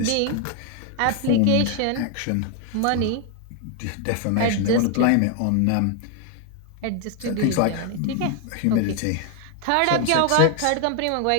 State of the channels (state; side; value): different; both; correlation 0.01